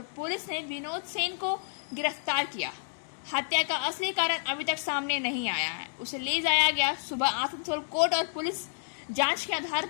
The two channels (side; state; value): right; silent; 58 dB below the other